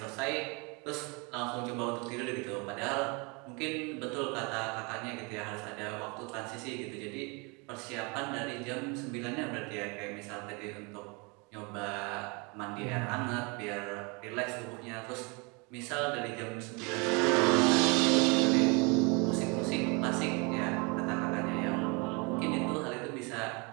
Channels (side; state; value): left; quieter; 30.4 dB